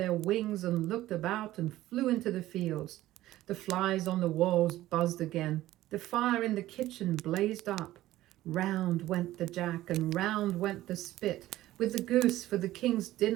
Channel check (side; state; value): left; quieter; 15.3 dB